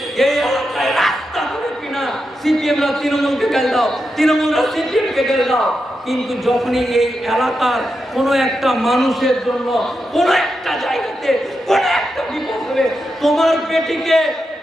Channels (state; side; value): normal; both; correlation 0.87